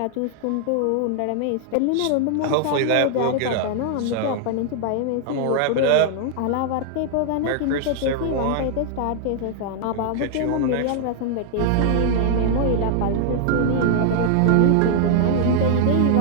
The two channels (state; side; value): different; both; correlation 0.00